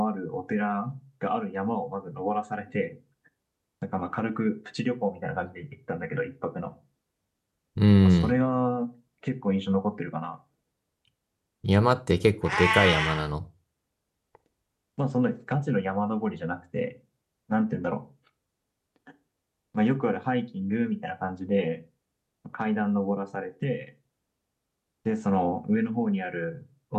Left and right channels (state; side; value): identical; both; correlation 1.00